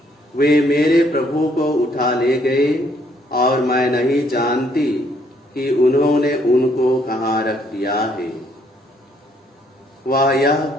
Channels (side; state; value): both; normal; correlation 0.68